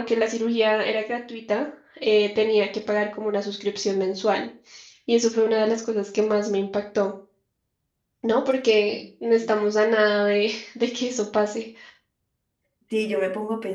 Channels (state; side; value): identical; both; correlation 1.00